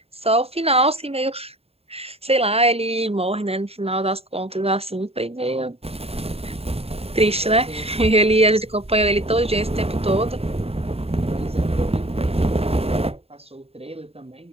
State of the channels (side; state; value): left; late; 0.29 ms